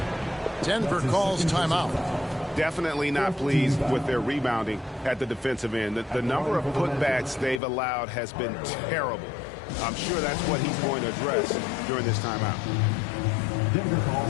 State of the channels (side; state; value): right; drops out; at 7.6 s